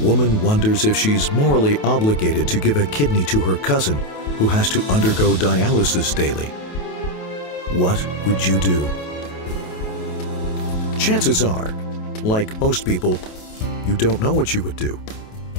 woman wonders if she's morally obligated to give a kidney to her cousin who has to undergo dialysis daily. What would you do? Chances are, like most people, you don't know what you would do,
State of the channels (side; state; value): right; late; 28 ms